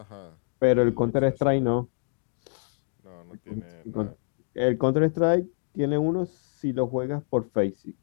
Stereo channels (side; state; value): right; silent; digital silence